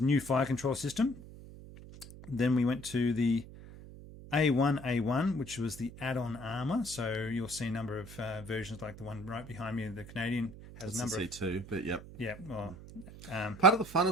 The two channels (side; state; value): right; noise; hum, 16 dB below the sound